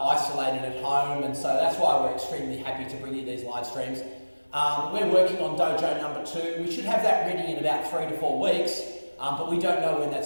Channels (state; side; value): inverted; both; correlation -1.00